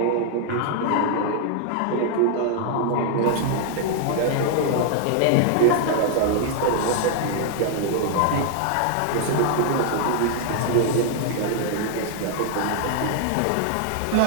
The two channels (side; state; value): both; different; correlation 0.00